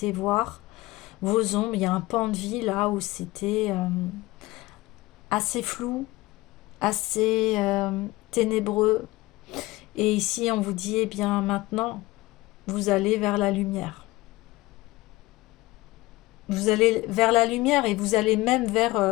voir vos ombres. Il y a un pan de vie là où c'était assez flou, assez ténébreux. Et ici, on vous dit, eh bien maintenant, vous allez vers la lumière. Vous allez vers la lumière et vous allez même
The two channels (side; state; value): right; quieter; 19.9 dB